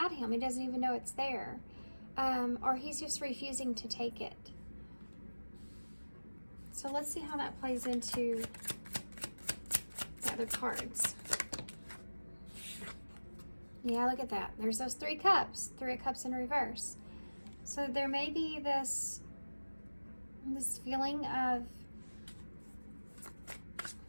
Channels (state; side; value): inverted; both; correlation -1.00